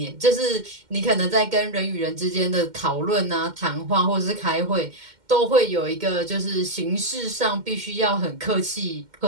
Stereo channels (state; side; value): late; left; 2.1 ms